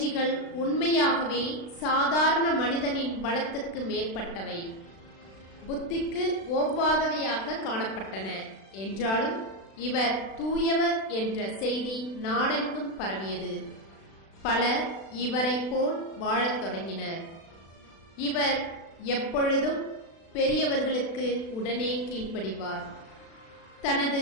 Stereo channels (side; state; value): right; late; 36 ms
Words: உண்மையாகவே சாதாரண மனிதனின் பலத்துக்கு மேற்பட்டவை, புத்திக்கு ஒவ்வாதவையாக காணப்பட்டன. என்றாலும் இவர் தூயவர் என்ற செய்தி நாடெங்கும் பரவியது. பலர் இவரைப் போல் வாழத் தொடங்கினர். இவர் எப்பொழுதும் பெரியவர்களுக்கு உடனே கீழ்ப்படிவார். தனது